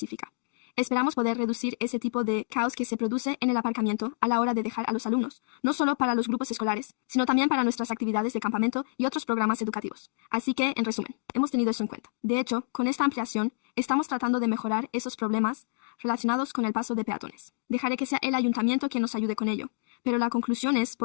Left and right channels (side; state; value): right; silent; digital silence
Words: Esperamos poder reducir ese tipo de caos que se produce en el aparcamiento a la hora de dejar a los alumnos, no solo para los grupos escolares, sino también para nuestras actividades de campamento y otros programas educativos. Así que, en resumen, hemos tenido eso en cuenta. De hecho, con esta ampliación, estamos tratando de mejorar esos problemas relacionados con el paso de peatones. Dejaré que sea el ayuntamiento quien nos ayude con ello. Pero la conclusión es,